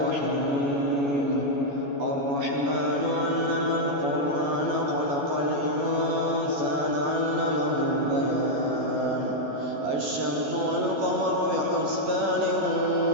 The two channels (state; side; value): late; left; 14 ms